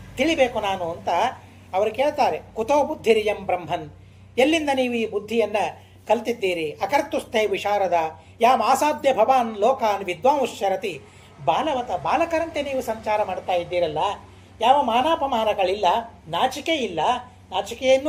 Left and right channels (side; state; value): both; identical; correlation 1.00